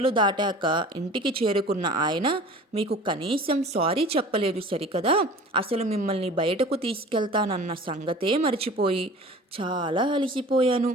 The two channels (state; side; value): normal; both; correlation 0.42